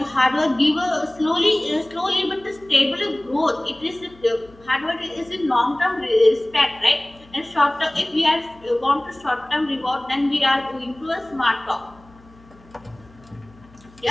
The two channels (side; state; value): left; noise; hum, 26 dB below the sound